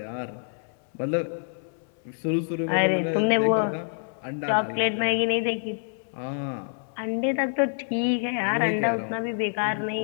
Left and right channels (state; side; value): silent; right; 60 dB below the other